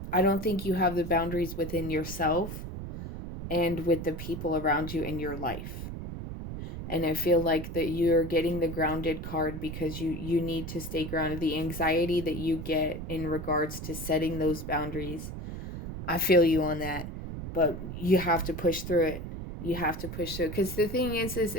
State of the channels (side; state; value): right; noise; rumble, 8 dB below the sound